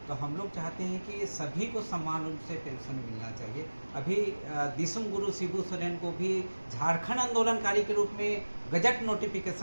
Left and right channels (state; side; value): inverted; both; correlation -1.00